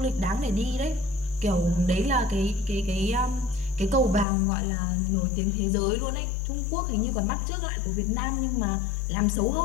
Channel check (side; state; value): right; drops out; at 4.2 s